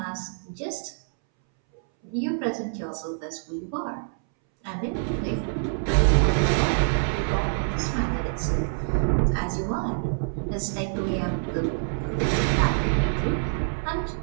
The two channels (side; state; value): left; silent; 61 dB below the other